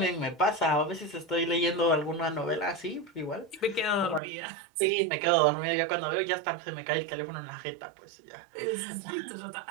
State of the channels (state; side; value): drops out; left; at 4.2 s